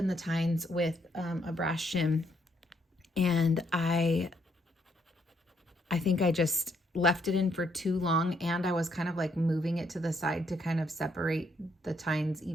the tines with a brass shim, and I think I just left it in for too long, and I was kind of like moving it to the side to kind of separate the tines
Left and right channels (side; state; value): both; normal; correlation 0.72